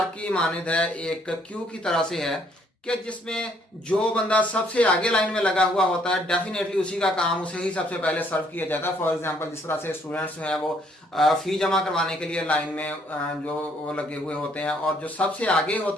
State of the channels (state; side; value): normal; both; correlation 0.67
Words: की मानद है, एक क्यू की तरह से है कि जिसमें जो बंदा सबसे आगे लाइन में लगा हुआ होता है डेफिनेटली उसी का काम उसे ही सबसे पहले सर्व किया जाता है। फॉर एग्जांपल, जिस तरह से स्टूडेंट्स हैं वो फी जमा करवाने के लिए लाइन में जो वो लगे हुए होते हैं, और जो सबसे आगे